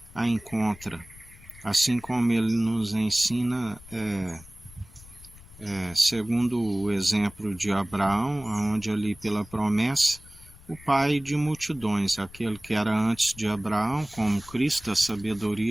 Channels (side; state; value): left; noise; rumble, 21 dB below the sound